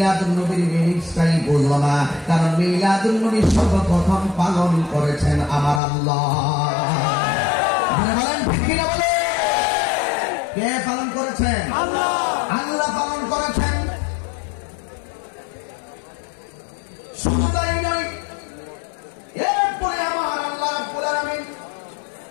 নবীর মিনিংসটাই বুঝো না, কারণ মিলাদুন নবী সর্বপ্রথম পালন করেছেন আমার আল্লাহ। বলেন ঠিক কিনা বলে? কে পালন করেছেন? আল্লাহ। আল্লাহ পালন করেছেন। শুধু তাই নয়, এরপরে আমার আল্লাহ রাব্বুল আলামিন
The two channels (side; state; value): right; drops out; at 5.8 s